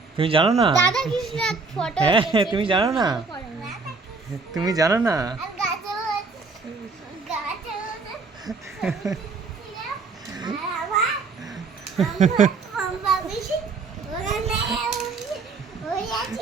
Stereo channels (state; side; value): quieter; left; 4.3 dB